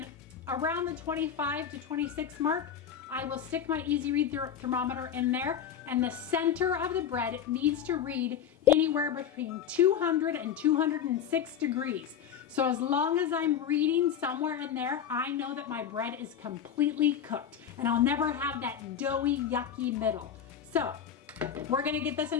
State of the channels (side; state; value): right; quieter; 8.6 dB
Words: around the 25 to 26 mark, I will stick my Easy Read thermometer in there, and the center of the bread needs to read anywhere between 200 and 206 degrees. So as long as I'm reading somewhere in there, I know that my bread is completely cooked, and I'll never have that doughy, yucky middle. So We're gonna get this